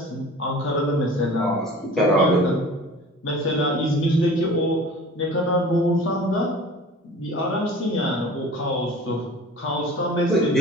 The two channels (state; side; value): normal; both; correlation 0.42